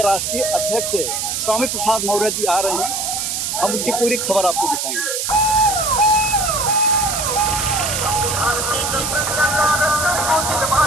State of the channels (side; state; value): right; noise; hiss, 2 dB below the sound